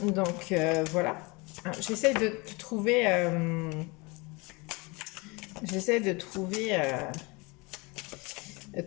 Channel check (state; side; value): quieter; right; 26.8 dB